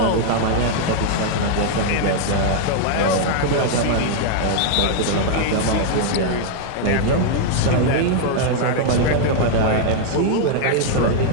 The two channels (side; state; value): both; different; correlation 0.00